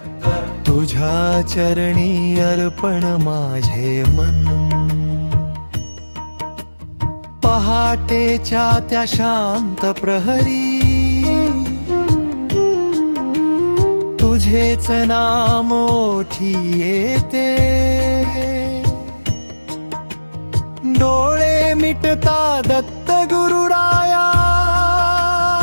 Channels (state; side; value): inverted; both; correlation -1.00